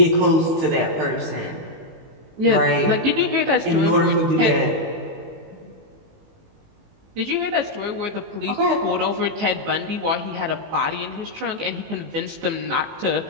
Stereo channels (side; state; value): left; late; 19 ms